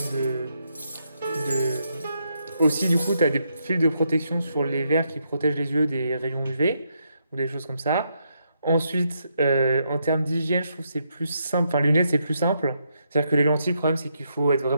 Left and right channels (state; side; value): inverted; both; correlation -0.78